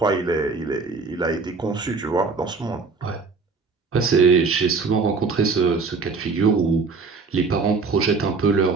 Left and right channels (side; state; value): left; quieter; 4.5 dB